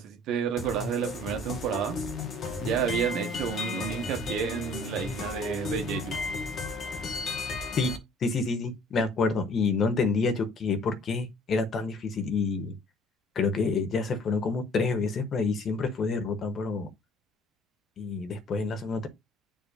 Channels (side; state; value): both; normal; correlation 0.53